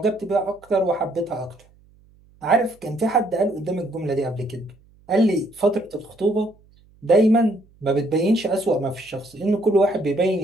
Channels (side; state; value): right; noise; hum, 30 dB below the sound